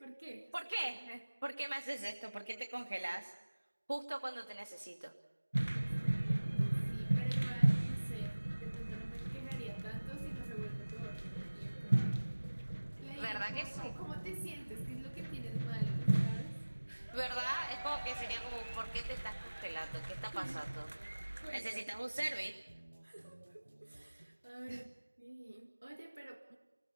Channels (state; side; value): inverted; both; correlation -1.00